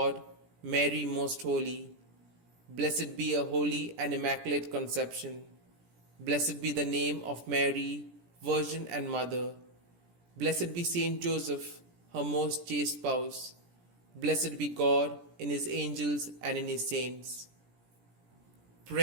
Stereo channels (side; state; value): left; late; 17 ms